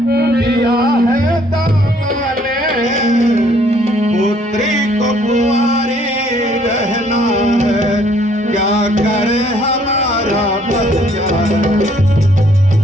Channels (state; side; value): normal; both; correlation 0.63